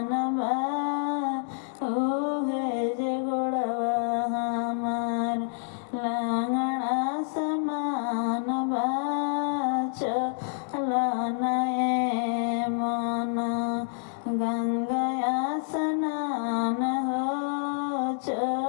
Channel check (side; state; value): right; silent; digital silence